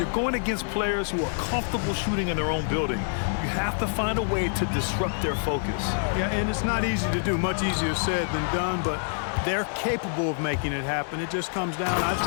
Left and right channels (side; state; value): right; silent; 61 dB below the other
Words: going against players who are comfortable shooting in their own building. You have to find a way to disrupt their focus. Yeah, and it's not easy to do. Much easier said than done, but they're capable of making it happen. It just comes down, I